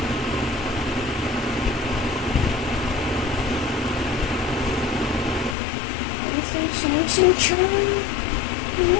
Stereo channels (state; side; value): drops out; right; at 5.6 s